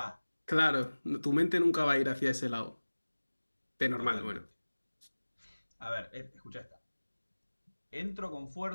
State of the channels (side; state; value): both; inverted; correlation -1.00